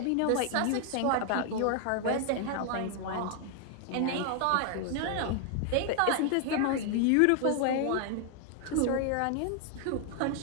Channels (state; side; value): different; both; correlation 0.00